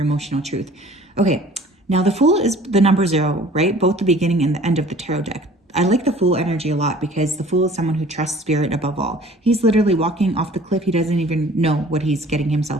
emotional truth. Okay, now the Fool is the number 0, right? Both the beginning and the end of the tarot deck. I like the Fool energy a lot because the Fool is someone who trusts spirit above all. He's literally walking off the cliff. He doesn't even know what he's getting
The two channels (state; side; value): normal; both; correlation 0.49